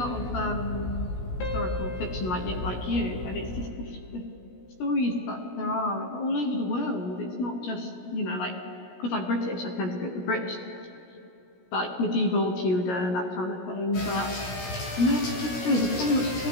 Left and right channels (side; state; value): right; late; 17 ms